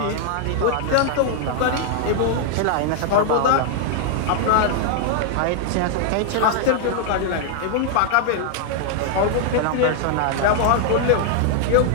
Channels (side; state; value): both; different; correlation 0.00